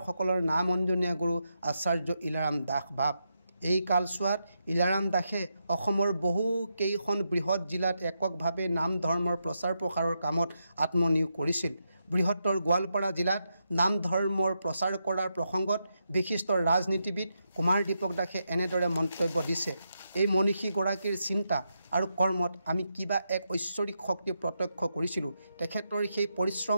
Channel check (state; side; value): inverted; both; correlation -0.84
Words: নাম অঞ্জনীয়া গুৰু আচাৰ্য ইলাৰাম দাস বাপ। এই কালছোৱাত ইলাৰাম দাসে অসমৰ বহু কেইখন বৃহৎ জিলাত এককভাৱে নাম ধৰ্মৰ প্ৰচাৰ প্ৰসাৰৰ কামত আত্মনিয়োগ কৰিছিল। বৃহত্তৰ গোৱালপাৰা জিলাত নাম ধৰ্মৰ প্ৰচাৰ কৰাৰ প্ৰসংগত বিশিষ্ট ৰাজনীতিবিদ কুমাৰ দীপক দাসে এনেদৰে মন্তব্য দিছে, এই মনীষীগৰাকীৰ চিন্তা আৰু কৰ্মত আমি কিবা এক ঐশ্বৰিক শক্তি প্ৰত্যক্ষ কৰিছিলোঁ। তেখেতৰ সেই